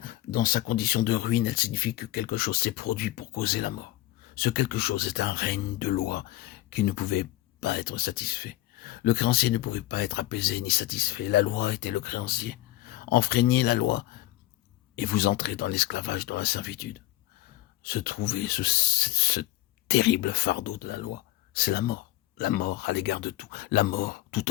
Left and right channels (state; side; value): quieter; right; 16.2 dB